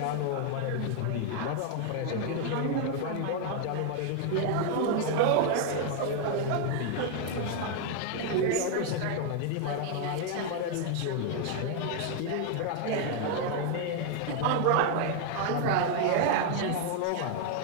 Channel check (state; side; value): different; both; correlation 0.00